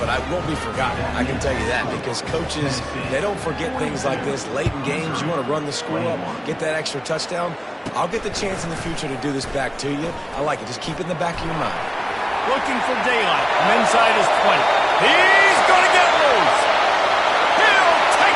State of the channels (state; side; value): identical; both; correlation 1.00